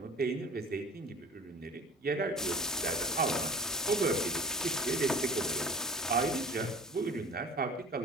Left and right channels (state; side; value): normal; both; correlation 0.42